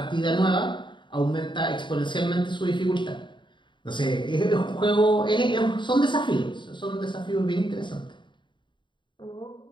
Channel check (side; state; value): right; late; 0.23 ms